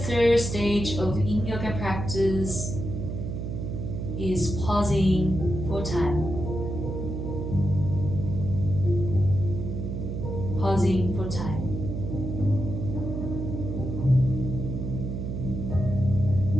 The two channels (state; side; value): noise; right; hum, 4 dB below the sound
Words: stage of Yin Yoga practice is pausing for time. Pausing for time.